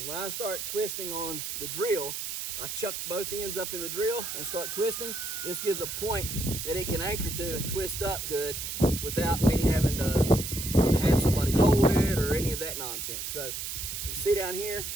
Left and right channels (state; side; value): noise; right; hiss, 5 dB below the sound